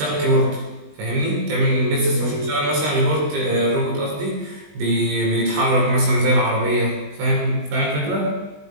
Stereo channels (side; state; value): left; late; 20 ms